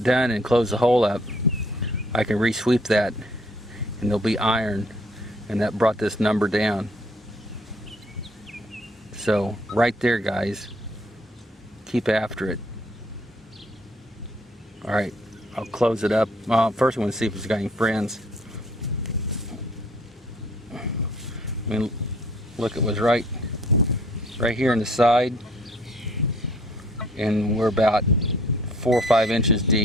done and close the hole up, I can re-sweep that and there'll be iron, and that brought this number down. So right there, guys, keep after it. Alright, I'll close it up. First I want to see if it's got any friends. I mean, look, it was right here on the side, and we're about 4 or 5 inches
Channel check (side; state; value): both; normal; correlation 0.60